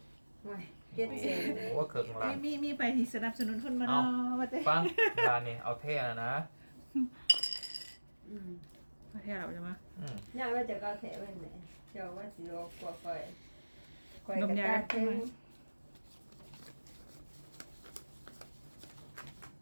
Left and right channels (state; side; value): inverted; both; correlation -1.00